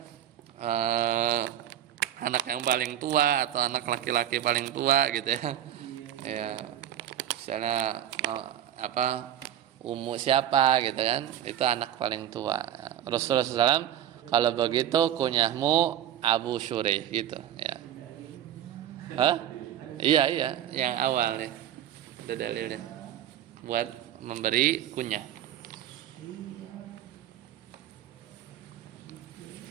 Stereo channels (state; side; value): quieter; left; 11.2 dB